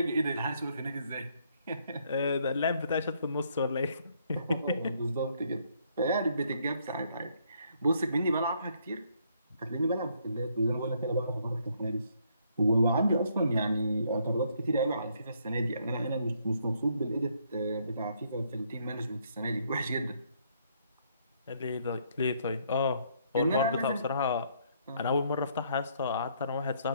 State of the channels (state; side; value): inverted; both; correlation -0.69